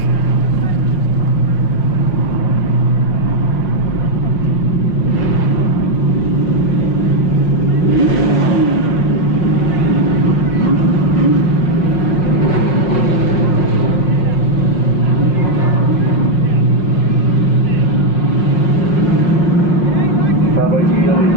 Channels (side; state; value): right; late; 5.5 ms